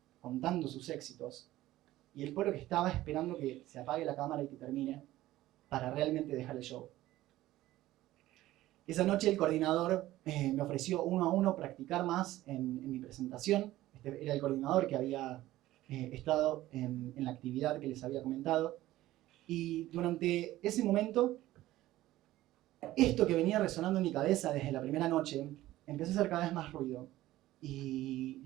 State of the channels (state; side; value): quieter; left; 15.7 dB